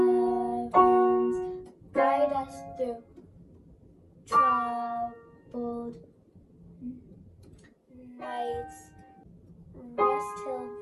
guide us through troubled nights, rest till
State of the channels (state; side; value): identical; both; correlation 1.00